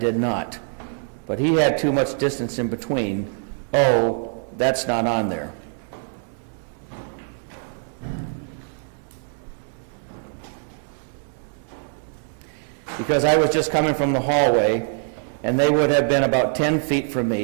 not. But he had too much distance in between. Oh, that's not on there. Because I was just coming from the hallway, and they would have been about 10 feet from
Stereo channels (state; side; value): silent; left; 63 dB below the other